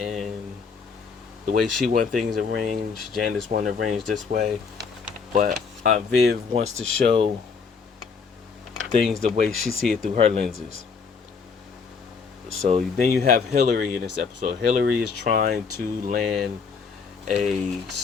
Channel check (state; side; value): quieter; right; 5.4 dB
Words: the way she want things arranged. Janice want to arrange this way, but Aunt Viv wants to show things the way she see it through her lenses. So then you have Hillary in this episode. Hillary is trying to land a